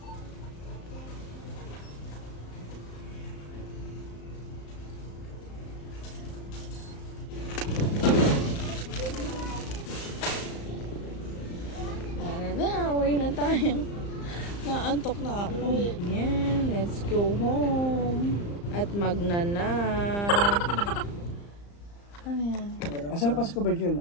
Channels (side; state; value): right; late; 35 ms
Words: Uwi na tayo. Naantok na ako. Yeah, let's go home. At magnanap. Ano yan? Asan pa si Covergirl?